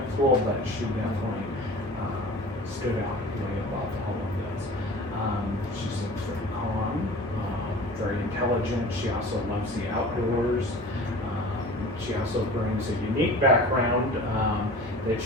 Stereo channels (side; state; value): both; normal; correlation 0.40